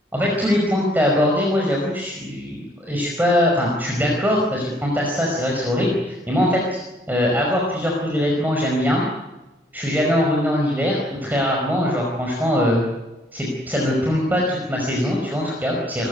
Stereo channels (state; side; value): normal; both; correlation 0.63